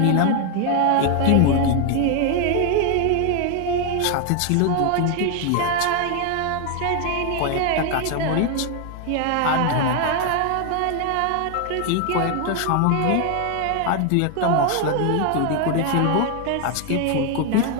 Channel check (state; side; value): different; both; correlation 0.01